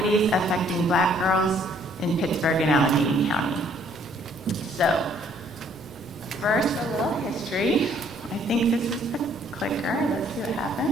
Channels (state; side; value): normal; both; correlation 0.62